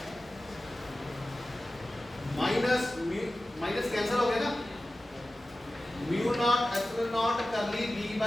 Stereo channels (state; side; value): normal; both; correlation 0.96